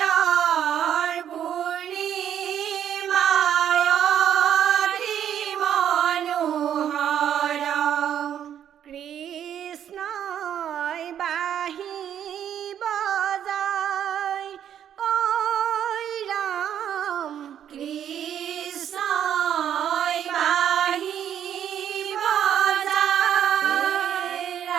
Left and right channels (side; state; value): left; quieter; 9.7 dB